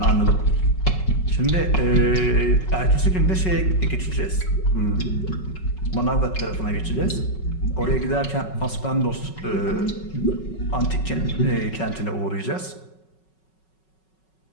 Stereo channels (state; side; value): late; right; 5.4 ms